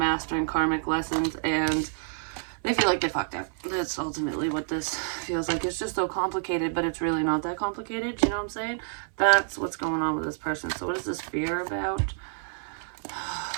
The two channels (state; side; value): silent; left; 59 dB below the other